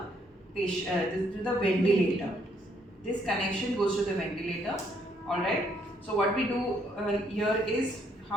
patient, to the ventilator. This connection goes to the ventilator. Alright, so what we do here is,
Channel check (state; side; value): normal; both; correlation 0.70